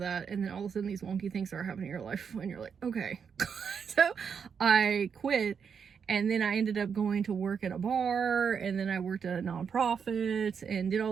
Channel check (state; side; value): quieter; left; 6.6 dB